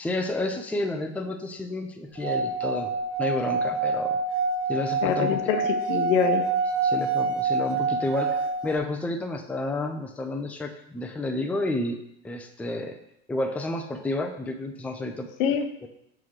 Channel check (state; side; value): normal; both; correlation 0.14